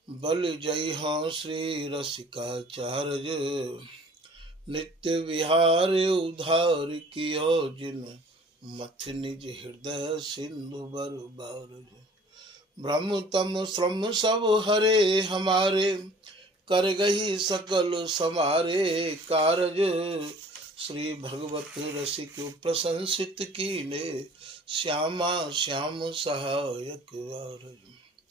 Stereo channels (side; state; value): both; normal; correlation 0.51